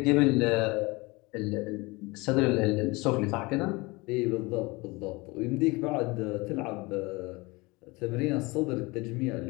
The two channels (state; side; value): quieter; right; 24.4 dB